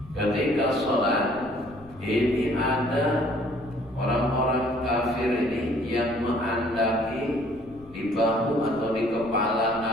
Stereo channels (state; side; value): noise; left; rumble, 22 dB below the sound